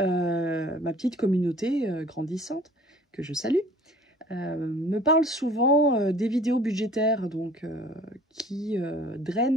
petite communauté grandissante, que je salue, me parle souvent des vidéos budgétaires donc, qui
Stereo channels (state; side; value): normal; both; correlation 0.50